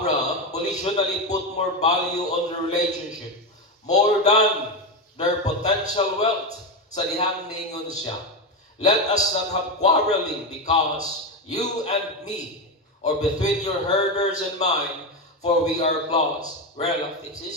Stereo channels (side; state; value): both; normal; correlation 0.13